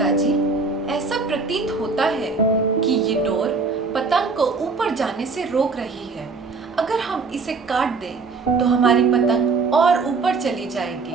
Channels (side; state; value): left; quieter; 4.3 dB